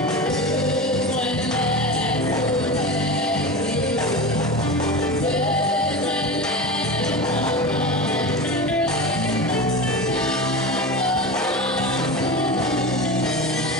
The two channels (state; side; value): normal; both; correlation 0.27